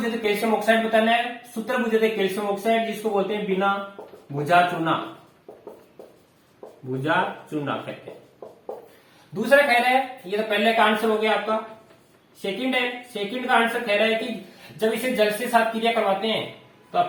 तो कैल्शियम ऑक्साइड बताना है, सूत्र पूछे थे कैल्शियम ऑक्साइड, जिसको बोलते हैं बिना बुझा चूना, बुझा चूना कहते हैं। दूसरा कह रहा है, ये तो पहले का आंसर हो गया आपका। सेकंड है, सेकंड का आंसर कह रहा है कि जब इसे जल से साथ क्रिया करवाते हैं, तो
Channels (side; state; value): both; identical; correlation 1.00